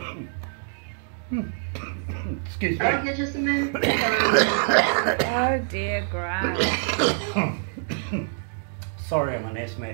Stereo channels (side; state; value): left; silent; digital silence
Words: excuse me. I'll get you some minutes. Oh dear, Grant. Sorry, I'm an